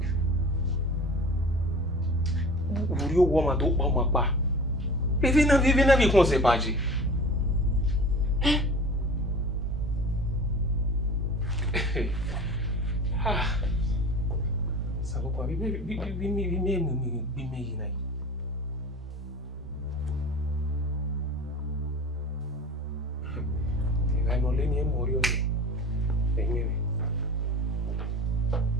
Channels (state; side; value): normal; both; correlation 0.38